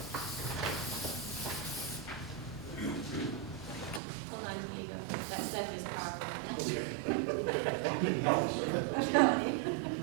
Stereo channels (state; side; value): drops out; left; at 4.0 s